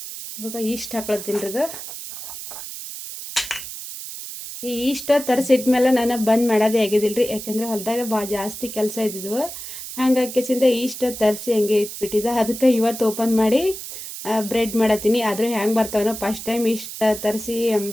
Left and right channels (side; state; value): right; noise; hiss, 10 dB below the sound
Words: ಇವಾಗ ಈಸ್ಟ್ ಹಾಕೊಳ್ತೀನಿ ರೀ. ಈ ಈಸ್ಟ್ ತರಿಸಿಟ್ಮೇಲೆ ನಾನು ಬಂದ್ ಮಾಡೋದೇ ಆಗಿದಿಲ್ರಿ. ಯಾಕಂದ್ರೆ ಹೊಲದಾಗ ಜಾಸ್ತಿ ಕೆಲಸ ಇದ್ದಿದ್ವು, ಹಾಗಾಗಿಸಿಂದ ಈಸ್ಟ್ ತರಿಸಿ ಹಂಗೆ ಇಟ್ಬಿಟ್ಟಿದ್ದೆ. ಅದಕ್ಕೆ ಇವತ್ತು ಓಪನ್ ಮಾಡಿ ಬ್ರೆಡ್ ಮಾಡತ್ತೀನಿ. ಆದರೂ ಹೆಂಗೆ ಬರ್ತಾವನೋ, ಫಸ್ಟ್ ಟೈಮ್ ಈಸ್ಟ್ ತರಿಸಿ